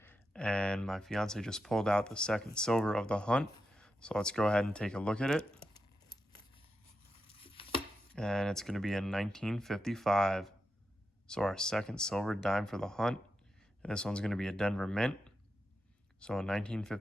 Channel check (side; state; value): both; normal; correlation 0.88